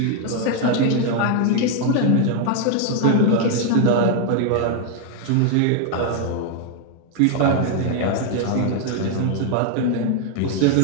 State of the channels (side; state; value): both; different; correlation 0.00